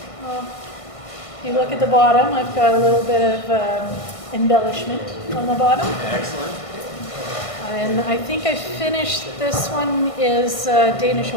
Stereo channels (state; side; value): late; right; 1.5 ms